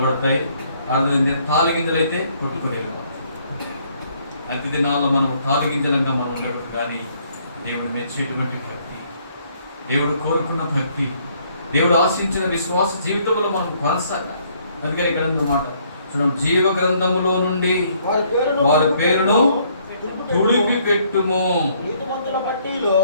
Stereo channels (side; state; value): both; inverted; correlation -0.66